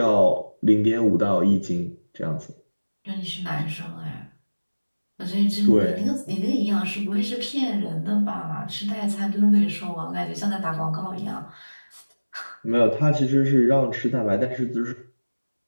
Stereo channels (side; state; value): both; inverted; correlation -1.00